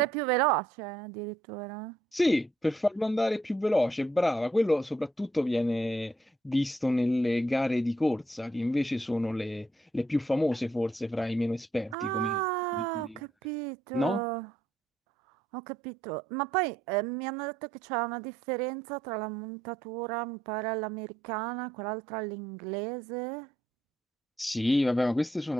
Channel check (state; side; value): normal; both; correlation 0.73